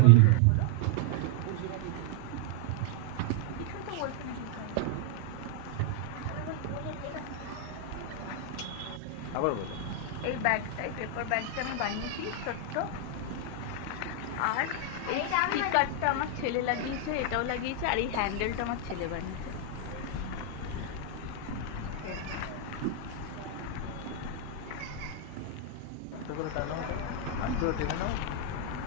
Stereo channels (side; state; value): both; different; correlation 0.00